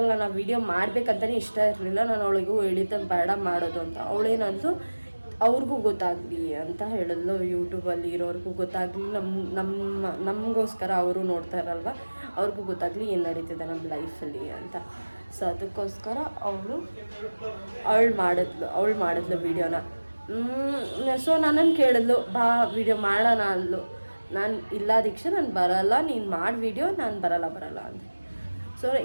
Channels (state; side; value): inverted; both; correlation -1.00